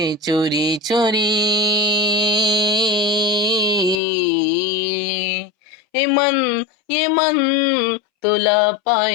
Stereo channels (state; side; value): drops out; right; at 4.0 s